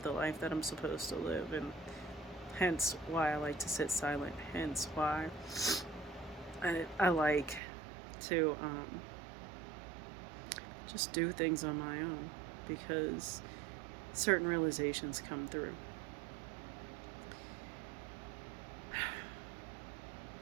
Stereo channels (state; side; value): drops out; left; at 7.6 s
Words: the life that I'm supposed to live, and hence why I like to sit silent, hence why I like to just do things on my own, because certain realizations come through.